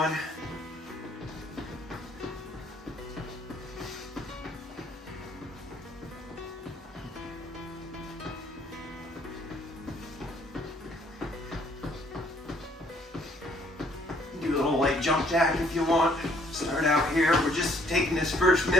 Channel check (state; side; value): normal; both; correlation 0.63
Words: Do a little light jump jack if you want. Start out here. We're just taking this first